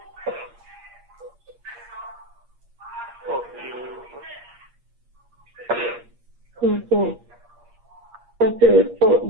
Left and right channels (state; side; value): late; left; 8.5 ms